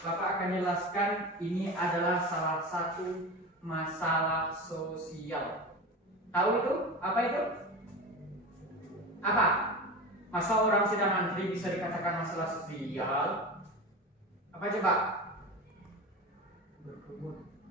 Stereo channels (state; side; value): normal; both; correlation 0.28